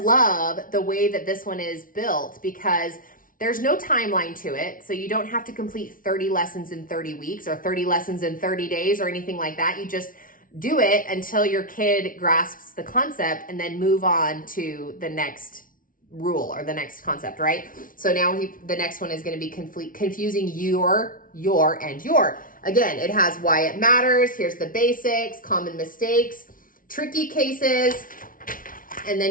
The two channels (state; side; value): late; right; 0.39 ms